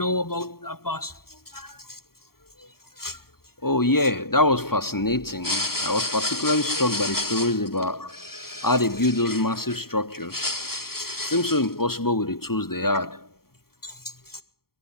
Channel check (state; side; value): late; right; 0.94 ms